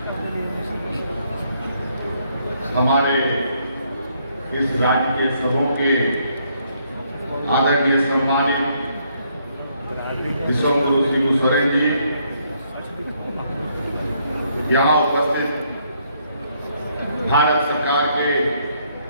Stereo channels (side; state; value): both; inverted; correlation -0.71